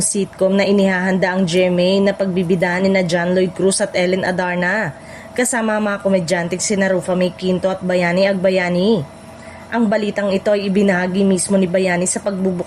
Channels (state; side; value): identical; both; correlation 1.00